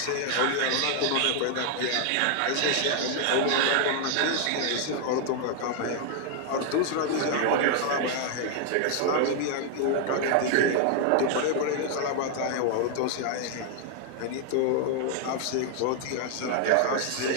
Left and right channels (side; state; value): both; different; correlation 0.00